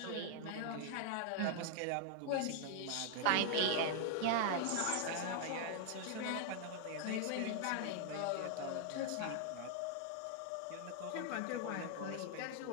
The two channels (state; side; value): different; both; correlation 0.00